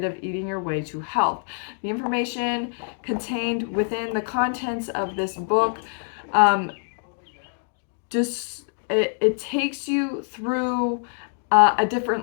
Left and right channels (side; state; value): right; silent; 62 dB below the other